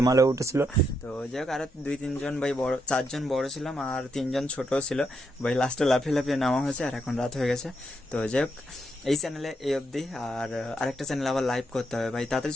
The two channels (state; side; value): normal; both; correlation 0.80